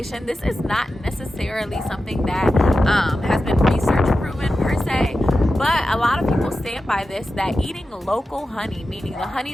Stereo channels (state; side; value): normal; both; correlation 0.92